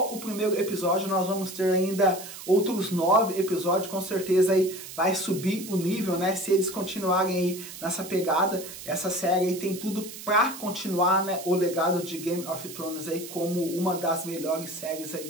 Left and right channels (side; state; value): right; noise; hiss, 12 dB below the sound